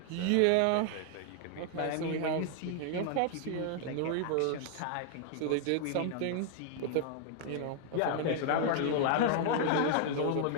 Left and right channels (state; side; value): different; both; correlation 0.00